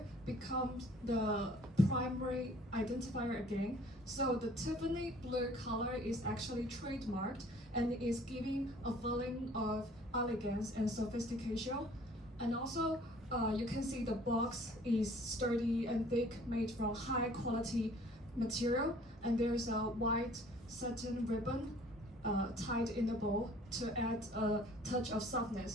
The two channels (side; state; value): both; normal; correlation 0.54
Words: become the primary identifier again. So the Tiffany blue color is actually trademarked and is giving a feeling of elegance and sophistication. And also, you can see the box is sturdy and thick, made from high quality material. And there's a white satin ribbon tied in the bowl to add a touch of